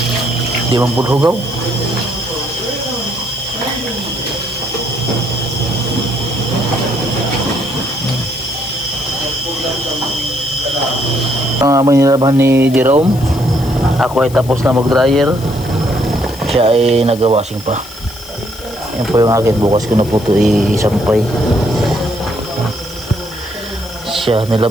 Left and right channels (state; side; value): noise; left; hiss, 17 dB below the sound